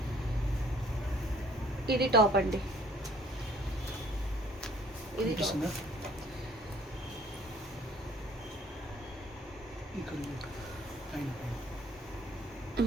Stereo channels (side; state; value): both; normal; correlation 0.58